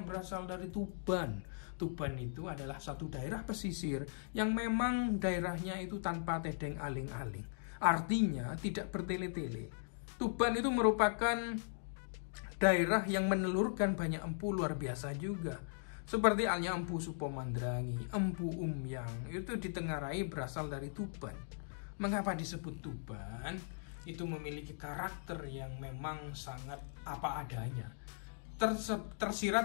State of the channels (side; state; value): right; silent; digital silence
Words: dari Tuban. Tuban itu adalah satu daerah pesisir yang memang daerahnya itu tanpa tedeng aling-aling. Artinya tidak bertele-tele. Tuban itu merupakan daerah yang menelurkan banyak empu luar biasa juga. Seperti halnya Empu Supomandrangi, Empu Umyang, itu ditengarai berasal dari Tuban. Mengapa disebut Tuban? Itu memiliki karakter yang memang sangat apa adanya.